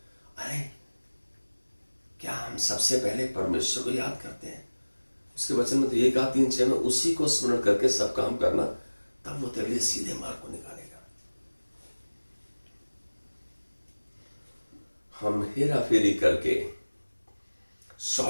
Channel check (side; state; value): both; inverted; correlation -1.00